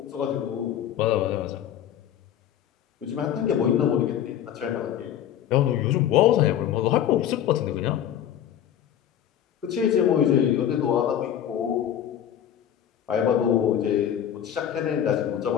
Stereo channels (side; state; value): right; quieter; 10.2 dB